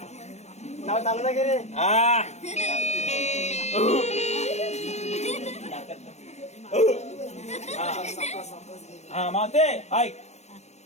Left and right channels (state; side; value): late; right; 0.32 ms